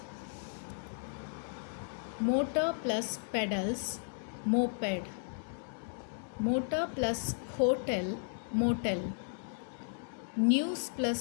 Motor plus pedals, moped. Motor plus hotel, motel. News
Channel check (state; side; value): silent; right; digital silence